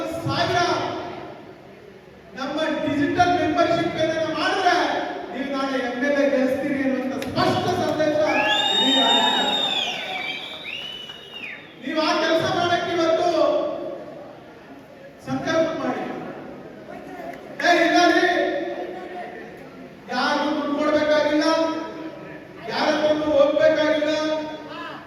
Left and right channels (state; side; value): identical; both; correlation 1.00